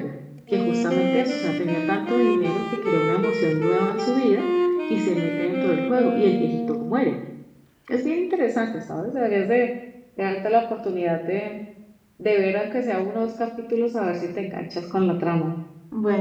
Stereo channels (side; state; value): both; identical; correlation 1.00